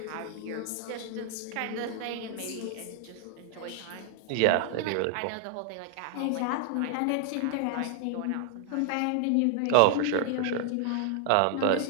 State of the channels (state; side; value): different; both; correlation 0.00